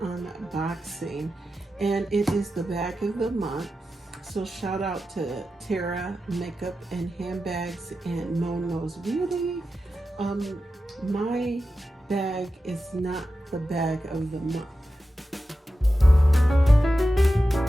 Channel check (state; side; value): normal; both; correlation 0.92